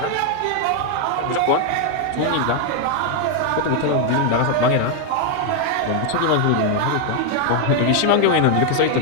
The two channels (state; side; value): different; both; correlation 0.00